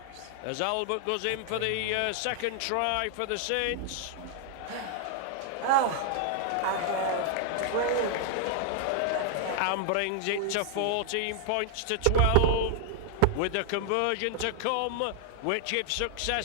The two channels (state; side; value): different; both; correlation -0.01